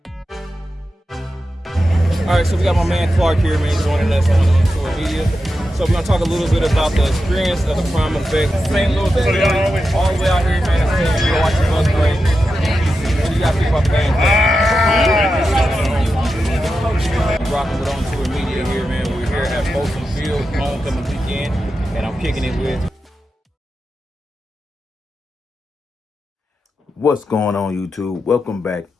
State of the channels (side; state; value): both; normal; correlation 0.89